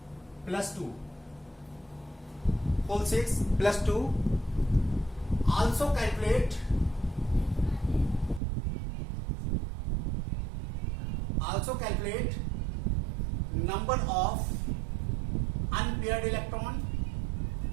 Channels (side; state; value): left; drops out; at 8.4 s